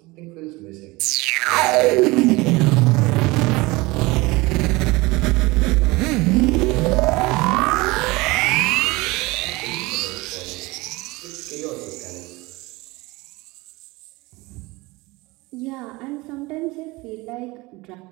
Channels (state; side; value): quieter; left; 22.6 dB